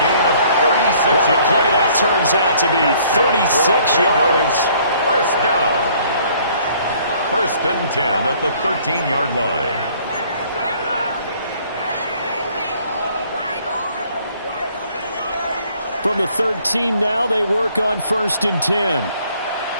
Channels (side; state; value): both; inverted; correlation -0.60